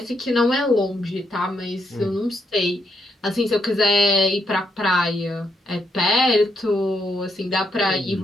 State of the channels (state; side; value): normal; both; correlation 0.78